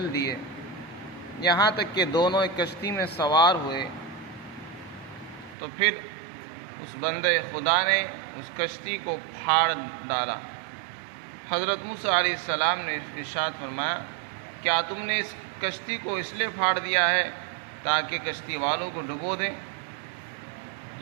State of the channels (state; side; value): drops out; left; at 5.6 s